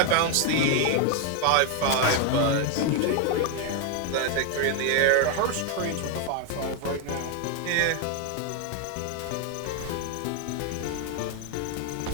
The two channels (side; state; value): both; different; correlation 0.01